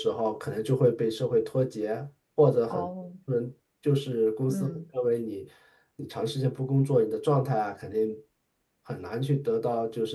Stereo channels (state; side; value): identical; both; correlation 1.00